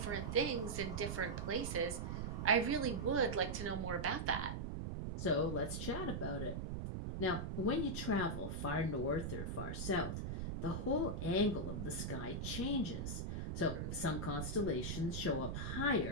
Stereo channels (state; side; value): noise; right; rumble, 3 dB below the sound